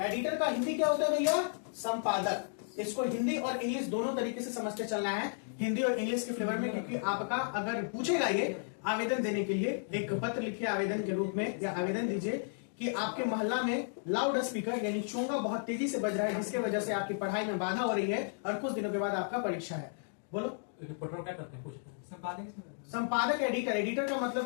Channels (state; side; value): silent; right; digital silence